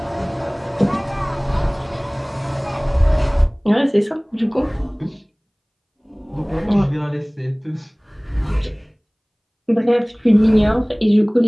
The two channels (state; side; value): identical; both; correlation 1.00